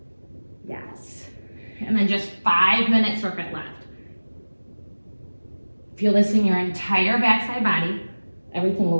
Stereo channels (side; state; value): both; inverted; correlation -1.00